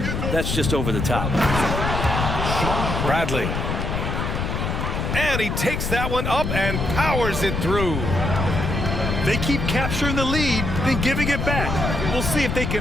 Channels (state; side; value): noise; left; rumble, 2 dB below the sound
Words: that's just over the top. Bradley. And he takes that one up and powers it through. They keep capturing the lead, then giving it back. We'll see if they